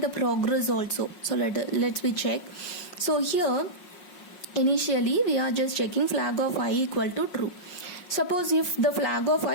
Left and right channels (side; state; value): right; late; 5.5 ms